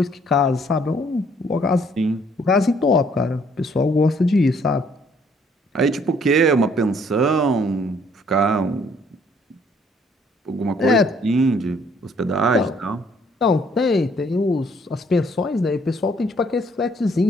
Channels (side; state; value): both; normal; correlation 0.63